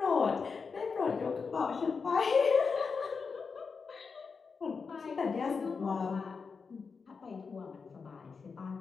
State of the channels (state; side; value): quieter; right; 5.2 dB